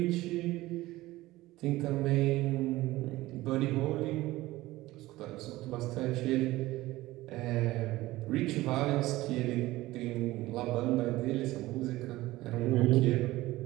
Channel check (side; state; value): left; quieter; 17.9 dB